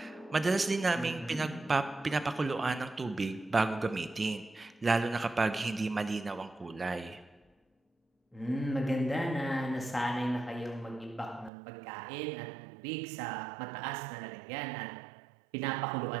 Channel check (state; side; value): drops out; left; at 11.5 s